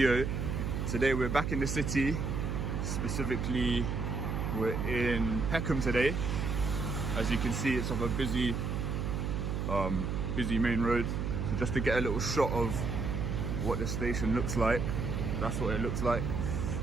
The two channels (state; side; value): noise; right; hum, 1 dB below the sound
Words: Today we're back in the city, specifically we're in Peckham today. As you can see, it's off a busy main road. So just to get a little shot of what the station looks like, that's what it looks like.